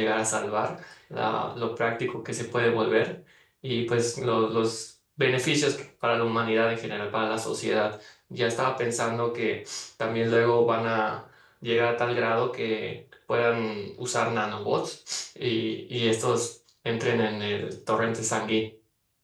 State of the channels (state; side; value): identical; both; correlation 1.00